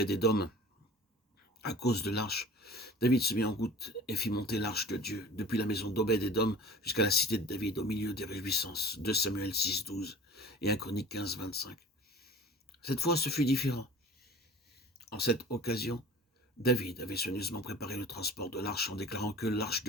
à cause de l'arche, David se mit en route et fit monter l'arche de Dieu depuis la maison d'Obed-Édom jusqu'à la cité de David au milieu des réjouissances. 2 Samuel 6, 12 et 1 Chronique 15, 25. Cette fois, ce fut différent. En cette occasion, David avait soigneusement préparé le transport de l'arche en déclarant que l'arche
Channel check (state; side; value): normal; both; correlation 0.42